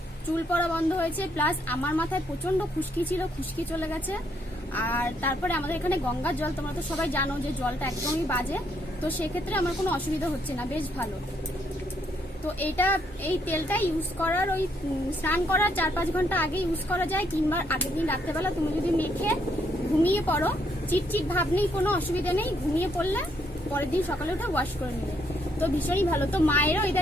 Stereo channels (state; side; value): normal; both; correlation 0.73